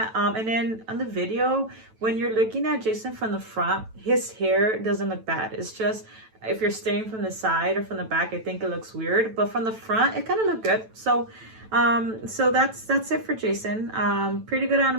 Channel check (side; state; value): left; late; 9.1 ms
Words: And then on the video, when you're looking at Jason from the front, his hair doesn't look bad. It's just if you're staring from the side or from the back, I think it looks weird. But from the front, it kind of looked good. So that's it for Jason. Pretty good